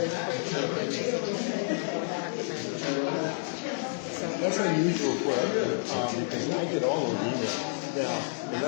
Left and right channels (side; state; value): right; silent; digital silence